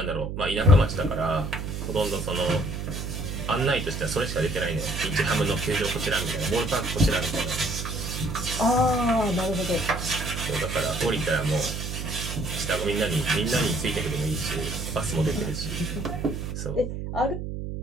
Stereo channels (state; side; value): noise; right; hum, 5 dB below the sound